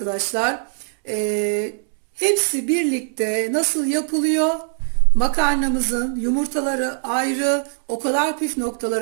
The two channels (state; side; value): silent; left; 65 dB below the other